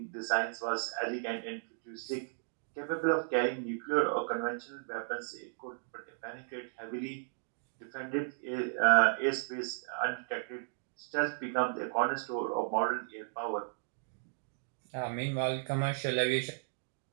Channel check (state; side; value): silent; left; digital silence